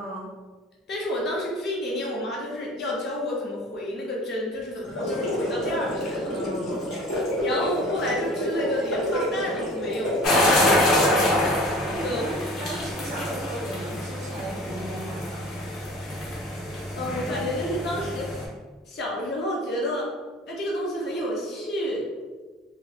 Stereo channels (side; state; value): both; normal; correlation 0.43